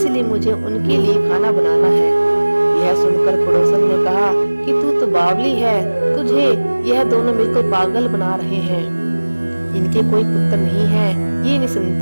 मुझे उनके लिए खाना बनाना है। यह सुनकर पड़ोसन ने कहा कि तू तो बावली है, तुझे यह दोनों मिलकर पागल बना रहे हैं। इनके कोई पुत्र नहीं है, ये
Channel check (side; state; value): both; inverted; correlation -1.00